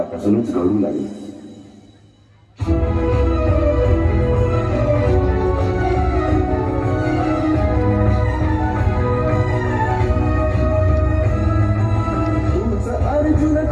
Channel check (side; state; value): both; identical; correlation 1.00